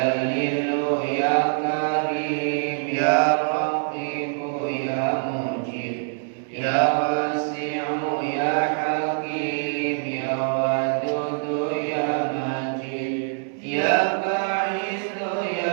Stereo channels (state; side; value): silent; left; digital silence